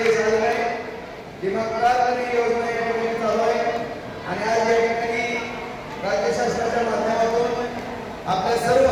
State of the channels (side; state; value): both; identical; correlation 1.00